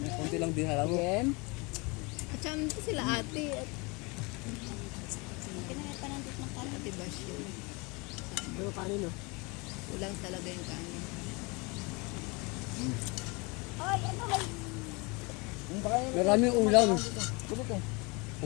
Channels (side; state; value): right; quieter; 27.8 dB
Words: Kunti lang din alam mo. Again. At saka nandito sila ate. At Kinain pa nandito ng kanin. ate Basyon. Pero kanino? Kulang talaga yung kanin. Oy, ano may Maraming ulam. Tulog eh.